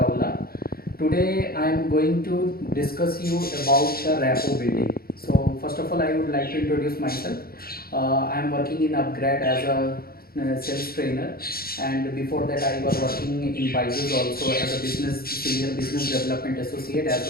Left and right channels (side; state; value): right; late; 0.44 ms